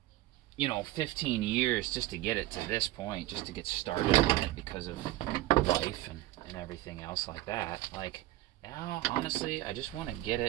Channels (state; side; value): quieter; left; 16.6 dB